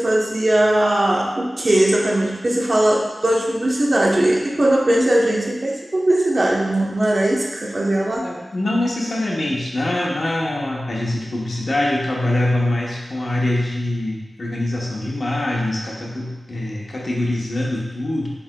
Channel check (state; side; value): normal; both; correlation 0.96